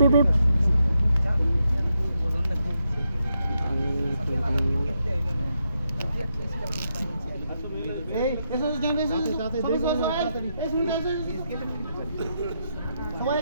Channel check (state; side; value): inverted; both; correlation -0.82